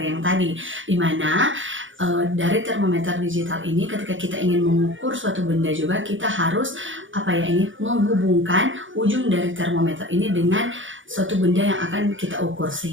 yang tadi, di mana dari termometer digital ini ketika kita ingin mengukur suatu benda juga kita harus menghubungkan ujung dari termometer ini dengan suatu benda yang akan kita ukur,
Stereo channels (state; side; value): late; left; 0.56 ms